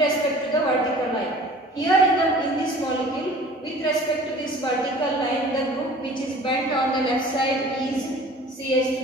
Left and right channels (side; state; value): both; normal; correlation 0.46